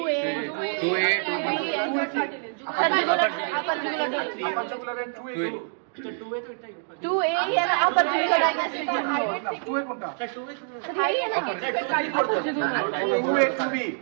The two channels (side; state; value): left; silent; digital silence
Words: 2A 2B upper jugular upper jugular and 2A 2A and upper tracheal digastric node. না 2A কোনটা upper 2A 2B